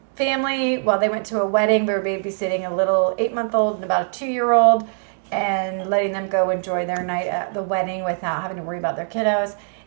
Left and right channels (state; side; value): silent; left; digital silence